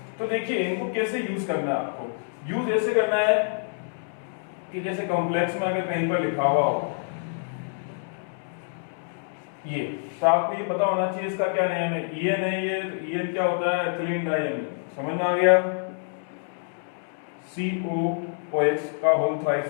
तो देखिए, इनको कैसे यूज करना है आपको। यूज ऐसे करना है कि जैसे कॉम्प्लेक्स में अगर कहीं पर लिखा हुआ हो ये, तो आपको ये पता होना चाहिए इसका क्या नेम है। EN है ये, तो EN क्या होता है? Ethylene diamine. समझ में आ गया? COOH का होल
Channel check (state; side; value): silent; right; digital silence